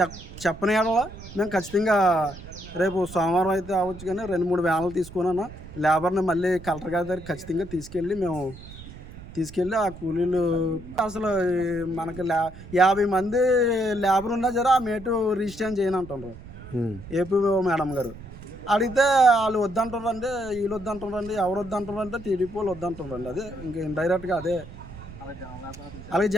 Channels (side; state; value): right; noise; rumble, 15 dB below the sound